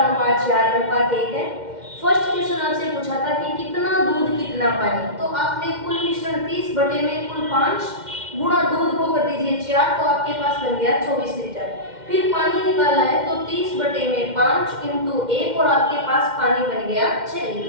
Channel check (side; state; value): left; late; 2.1 ms